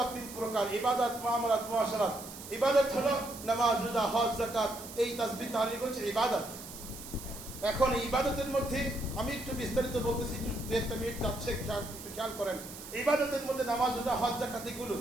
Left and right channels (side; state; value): right; noise; hiss, 13 dB below the sound